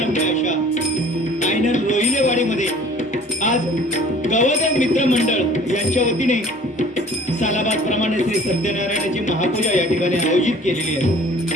अशा आयनल रोहिलेवाडीमध्ये आज गवदेव मित्र मंडळ यांच्या वतीने सालाबाद प्रमाणे श्री सत्यनारायणाची महापूजा या ठिकाणी आयोजित केलेली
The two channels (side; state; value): both; normal; correlation 0.50